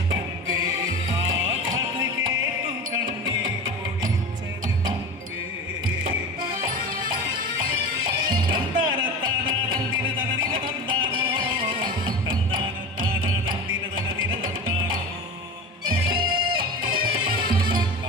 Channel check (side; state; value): both; normal; correlation 0.29